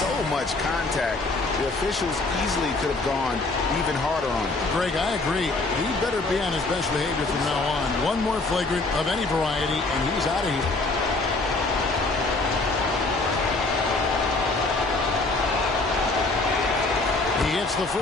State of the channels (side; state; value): right; quieter; 3.3 dB